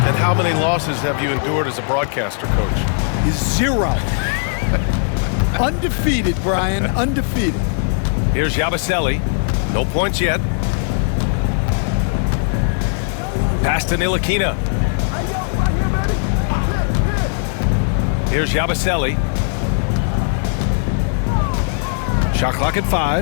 And how many losses have you endured as a broadcaster, Coach? 0. Undefeated, Brian, undefeated. Here's Yabusele. No points yet. Pass to Ntilikina. Here's Yabusele. Shot clock at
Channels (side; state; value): right; silent; 67 dB below the other